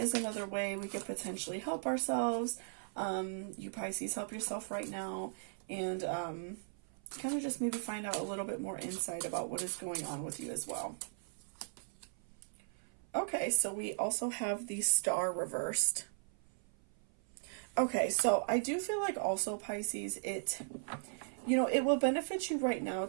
another way we could potentially help ourselves. You Pisces, help yourself right now, and kind of just maybe find out a little bit more insight about what is going on with you as well. Okay, so we also have the Star reversed. Okay, so I do feel like also Pisces, it will benefit you right now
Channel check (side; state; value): left; silent; 53 dB below the other